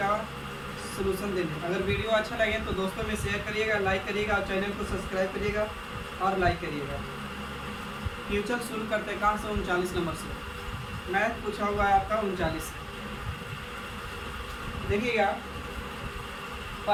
सलूशन देने। अगर वीडियो अच्छा लगे तो दोस्तों में शेयर करिएगा, लाइक करिएगा और चैनल को सब्सक्राइब करिएगा और लाइक करिएगा। क्वेश्चन शुरू करते हैं कहाँ से? 39 नंबर से मैथ पूछा हुआ है आपका 39। देखिएगा,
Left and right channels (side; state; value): both; identical; correlation 1.00